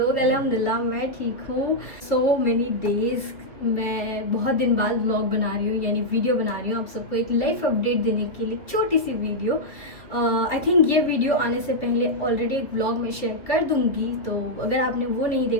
अल्हम्दुलिल्लाह मैं ठीक हूँ। सो मेनी डेज़ मैं बहुत दिन बाद व्लॉग बना रही हूँ, यानी वीडियो बना रही हूँ आप सबको एक लाइफ अपडेट देने के लिए, छोटी सी वीडियो। आई थिंक ये वीडियो आने से पहले ऑलरेडी एक व्लॉग में शेयर कर दूँगी, तो अगर आपने वो नहीं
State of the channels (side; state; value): right; late; 2.6 ms